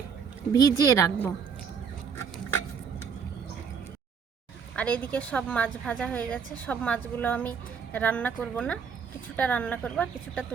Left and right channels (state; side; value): quieter; left; 6.5 dB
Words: ভিজিয়ে রাখবো। আর এদিকে সব মাছ ভাজা হয়ে গেছে। সব মাছগুলো আমি রান্না করব না, কিছুটা রান্না করব আর কিছুটা